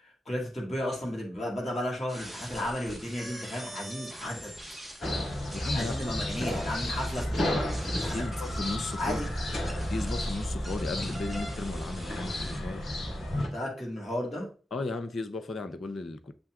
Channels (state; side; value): normal; both; correlation 0.88